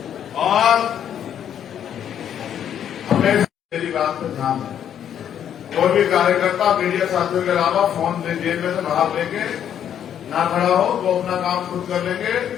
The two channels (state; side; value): quieter; right; 9.5 dB